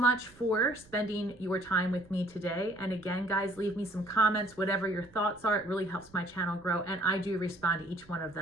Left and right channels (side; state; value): right; noise; rumble, 26 dB below the sound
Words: for spending your time with me today. And again, guys, leave me some comments, whatever your thoughts are. It really helps my channel grow. And I do respond to each one of